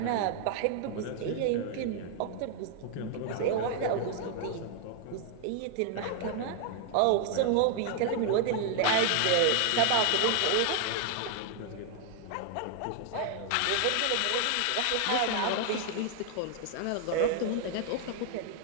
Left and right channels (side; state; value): both; different; correlation 0.00